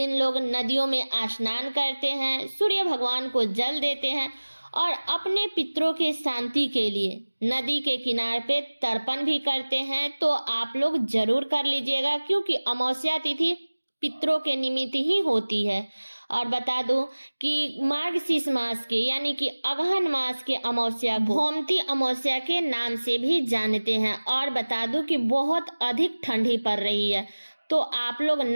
लोग नदियों में स्नान करते हैं, सूर्य भगवान को जल देते हैं और अपने पितरों के शांति के लिए नदी के किनारे पे तर्पण भी करते हैं। तो आप लोग जरूर कर लीजिएगा, क्योंकि अमावस्या तिथि पितरों के निमित्त ही होती है। और बता दूं कि मार्गशीर्ष मास के यानी कि अगहन मास के अमावस्या गोमती अमावस्या के नाम से भी जानते हैं। और बता दूं कि बहुत अधिक ठंडी पड़ रही है, तो आप लोग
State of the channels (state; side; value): inverted; both; correlation -1.00